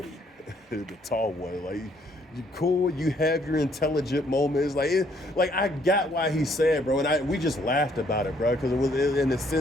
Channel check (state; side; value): normal; both; correlation 0.67